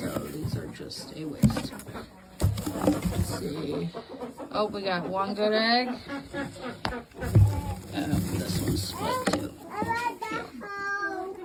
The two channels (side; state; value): both; identical; correlation 1.00